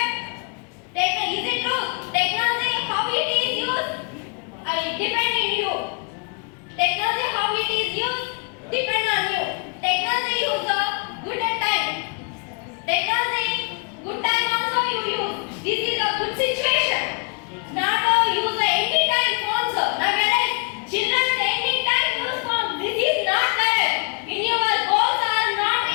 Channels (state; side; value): quieter; right; 34.7 dB